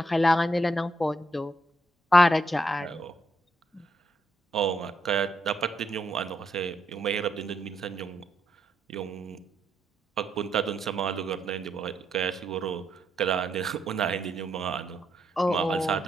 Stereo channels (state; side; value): normal; both; correlation 0.78